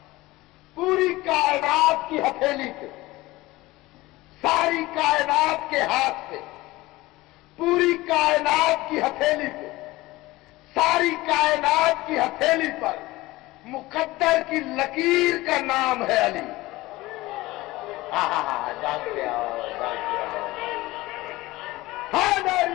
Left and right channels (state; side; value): quieter; right; 19.4 dB